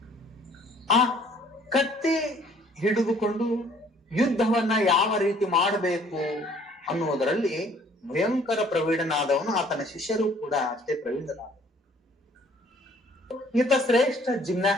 ಆ ಕತ್ತಿ ಹಿಡಿದುಕೊಂಡು ಯುದ್ಧವನ್ನ ಯಾವ ರೀತಿ ಮಾಡಬೇಕು ಅನ್ನುವುದರಲ್ಲಿ ಭಯಂಕರ ಪ್ರವೀಣನಾದವನು. ಆತನ ಶಿಷ್ಯರು ಕೂಡ ಅಷ್ಟೇ ಪ್ರವೀಣರಾದ. ಈತ ಶ್ರೇಷ್ಠ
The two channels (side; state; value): both; normal; correlation 0.58